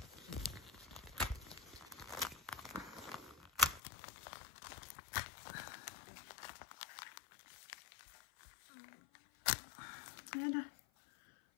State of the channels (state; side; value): drops out; right; at 3.8 s